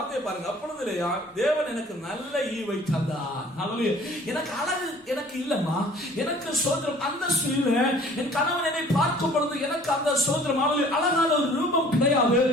பாருங்க. அப்பொழுது லேயா, தேவன் எனக்கு நல்ல ஈவை தந்தார். ஹல்லேலூயா. எனக்கு அழகு எனக்கு இல்லம்மா, எனக்கு ஸ்தோத்திரம் அந்தஸ்து இல்ல. என் கணவன் என்னை பார்க்கும் பொழுது எனக்கு அந்த ஸ்தோத்திரம் அழகான ஒரு ரூபம் கிடையாது.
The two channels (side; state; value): both; normal; correlation 0.52